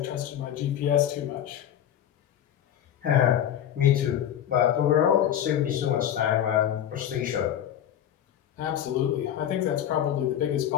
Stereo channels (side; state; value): right; quieter; 10.5 dB